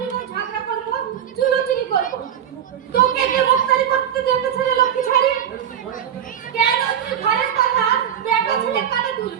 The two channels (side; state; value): left; quieter; 9.4 dB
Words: বউ ঝগড়া করবো চুলোচুরি করবো তোকে কে মুক্তারি করতে দেবে ছেলে লক্ষ্মী ছাড়ি কেন তুই ঘরের কথা বেটা ছেলে কানে